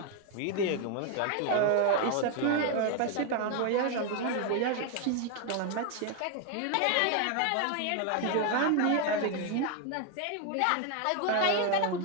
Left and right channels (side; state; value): both; different; correlation 0.01